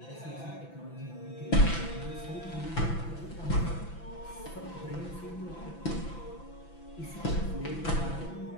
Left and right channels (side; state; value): right; late; 6.0 ms